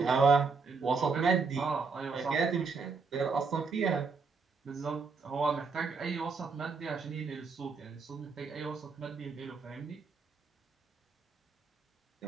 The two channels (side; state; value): left; quieter; 4.8 dB